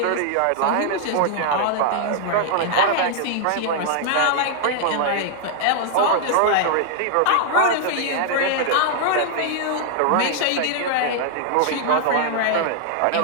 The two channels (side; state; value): both; different; correlation -0.01